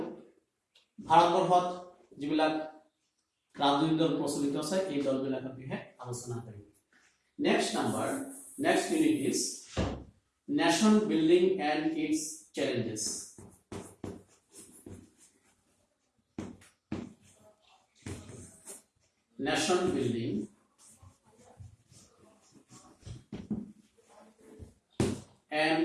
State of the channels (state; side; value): identical; both; correlation 1.00